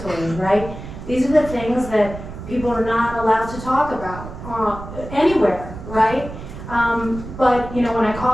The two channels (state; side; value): noise; right; rumble, 11 dB below the sound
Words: right? These are the things that people are not allowed to talk about anywhere, right? But, when I